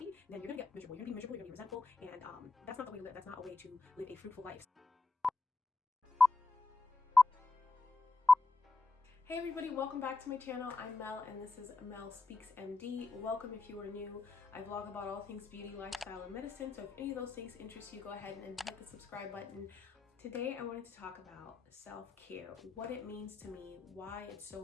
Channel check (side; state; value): right; quieter; 3.4 dB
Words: then you're gonna get miserable. You're gonna be miserable, you're gonna be resentful, and that's not the way to live. That's not a way to live a fruitful life. Hey everybody, welcome back to my channel. I'm Mel and this is Mel Speaks MD. Welcome if you are new. I vlog about all things beauty, lifestyle, and medicine, so if any of those things interest you, go ahead and hit the subscribe button. Today I wanted to talk about self-care, what it means to me, why it's